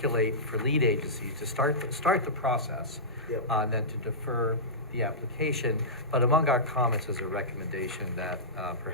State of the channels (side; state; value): both; normal; correlation -0.17